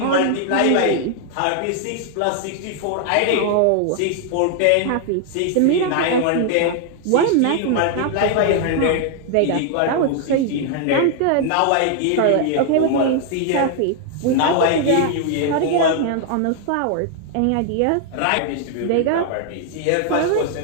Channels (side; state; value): both; different; correlation 0.00